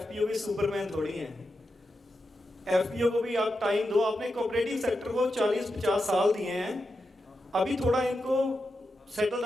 भी सुपरमैन थोड़ी हैं। एफपीओ को भी आप टाइम दो, आपने कोऑपरेटिव सेक्टर को 40-50 साल दिए हैं, अभी थोड़ा इनको सेटल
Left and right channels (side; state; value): both; normal; correlation 0.88